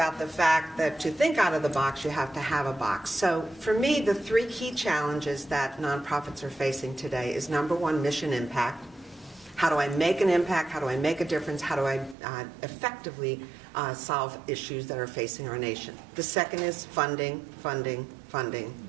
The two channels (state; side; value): drops out; left; at 12.2 s